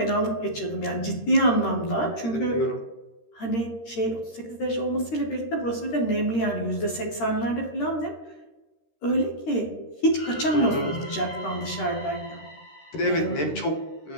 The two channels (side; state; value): right; late; 13 ms